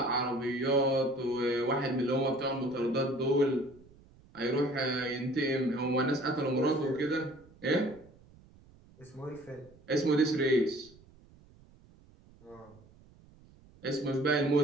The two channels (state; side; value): noise; right; rumble, 26 dB below the sound